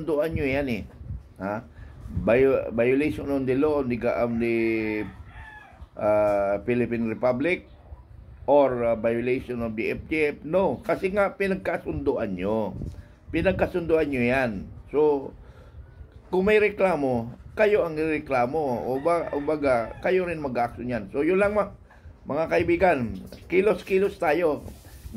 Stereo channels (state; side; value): identical; both; correlation 1.00